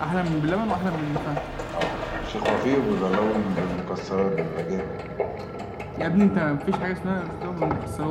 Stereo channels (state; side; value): identical; both; correlation 1.00